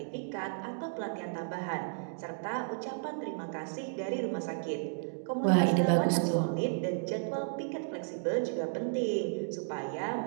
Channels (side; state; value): left; silent; digital silence